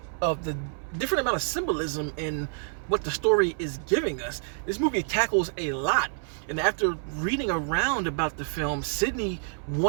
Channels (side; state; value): left; silent; digital silence